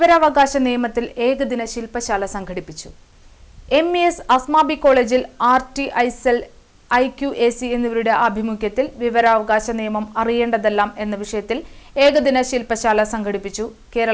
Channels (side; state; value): both; identical; correlation 1.00